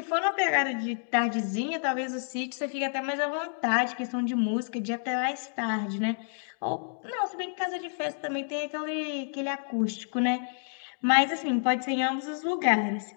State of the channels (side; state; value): right; silent; digital silence